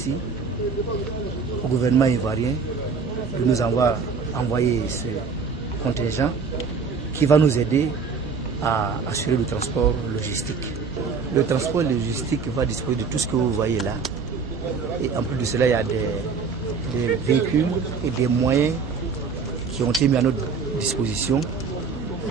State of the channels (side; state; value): left; quieter; 5.2 dB